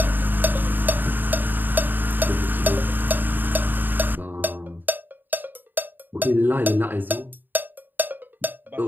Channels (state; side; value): late; left; 0.091 ms